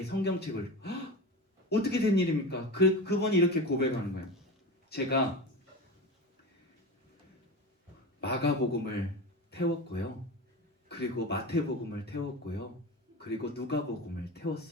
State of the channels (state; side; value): normal; both; correlation 0.27